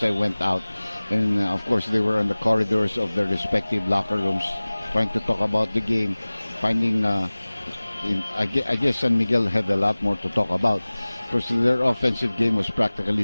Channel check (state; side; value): inverted; both; correlation -0.99